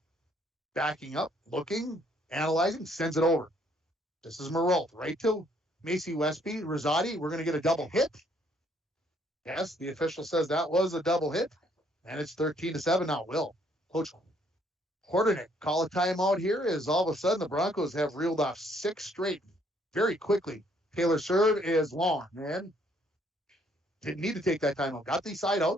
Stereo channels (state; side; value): normal; both; correlation 0.66